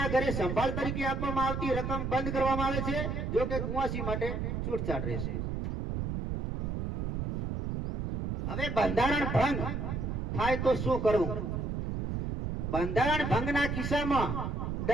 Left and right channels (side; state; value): right; noise; rumble, 2 dB below the sound